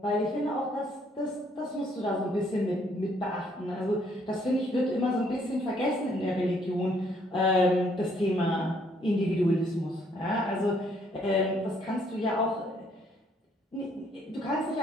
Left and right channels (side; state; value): both; normal; correlation 0.67